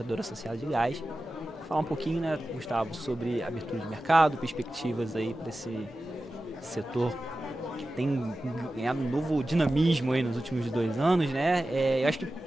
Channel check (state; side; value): normal; both; correlation 0.94